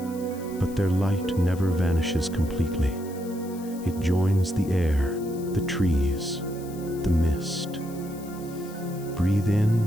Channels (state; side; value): noise; left; hiss, 20 dB below the sound